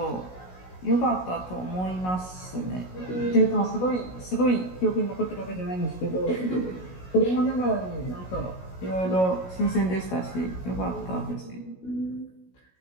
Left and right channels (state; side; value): late; right; 16 ms